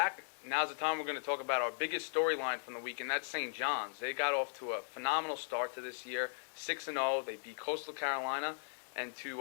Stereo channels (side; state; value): right; silent; 53 dB below the other